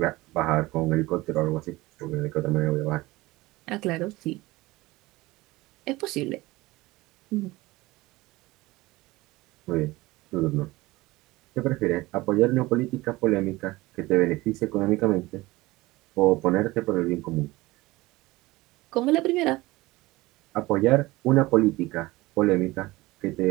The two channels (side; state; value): left; quieter; 20.1 dB